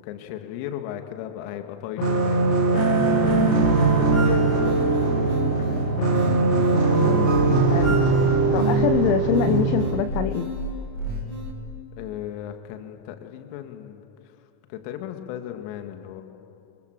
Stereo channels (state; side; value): late; right; 37 ms